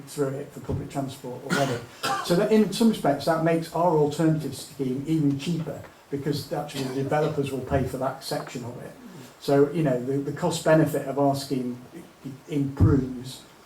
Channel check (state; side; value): identical; both; correlation 1.00